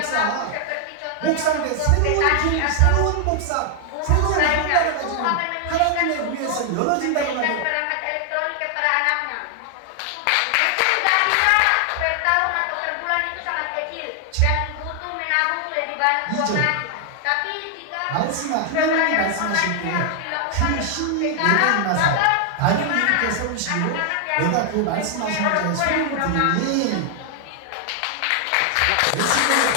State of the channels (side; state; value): both; different; correlation 0.00